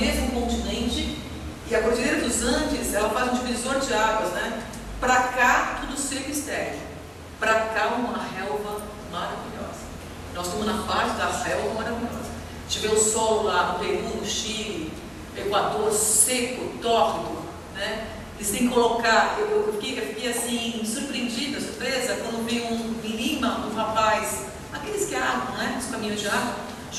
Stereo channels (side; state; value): both; identical; correlation 1.00